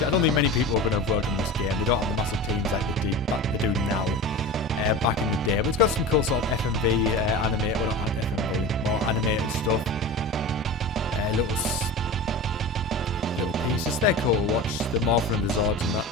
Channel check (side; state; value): both; normal; correlation 0.31